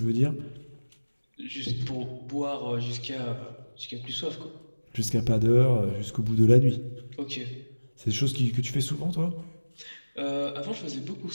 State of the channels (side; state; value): both; inverted; correlation -1.00